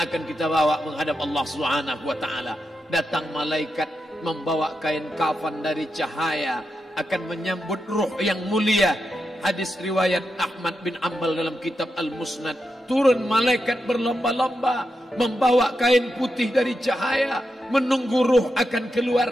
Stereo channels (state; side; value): normal; both; correlation 0.86